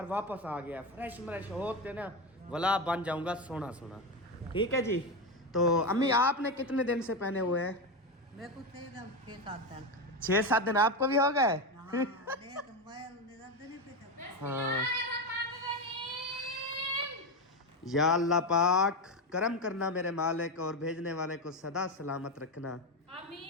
वापस आ गया फ्रेश होते ना वाला बन जाऊंगा सोना। ठीक है जी। तो अम्मी आपने कितने दिन से पहने हुए हैं? मेरे को थे एकदम 6-7 दिन। 6-7 दिन आपको भी हो गए? हाँ देख मैं निरंतर नहीं पीता। हाँ या अल्लाह पाक करम करना मेरे मालिक और भेजने वाले को सदा सलामत रखना।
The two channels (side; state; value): both; normal; correlation 0.14